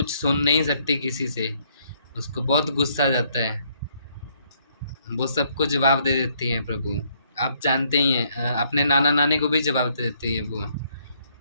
सुन नहीं सकती किसी से, उसको बहुत गुस्सा आ जाता है, वो सबको जवाब दे देती है प्रभु। आप जानते ही हैं, अपने नाना नानी को भी जवाब दे देती है वो।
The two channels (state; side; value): inverted; both; correlation -0.69